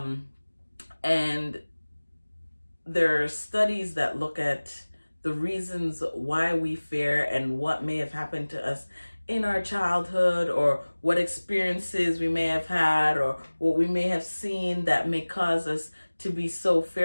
there are studies that look at the reasons why we fear and what may have happened to us in our childhood, or what experiences we may have had, or what we may have seen that may cause us to be so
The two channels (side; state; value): both; inverted; correlation -1.00